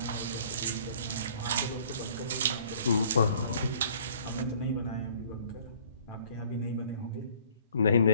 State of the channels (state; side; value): inverted; both; correlation -0.56